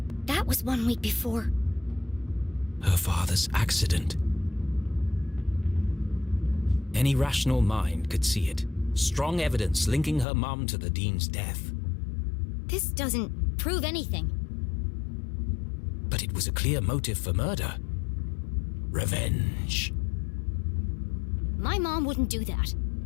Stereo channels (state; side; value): drops out; right; at 10.2 s